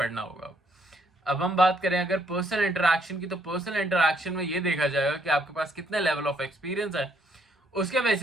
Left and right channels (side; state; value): both; normal; correlation 0.70